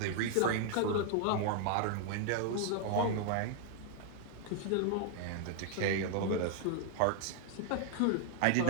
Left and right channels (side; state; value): both; different; correlation 0.00